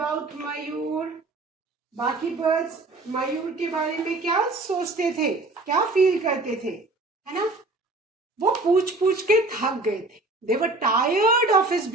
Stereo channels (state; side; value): quieter; left; 3.1 dB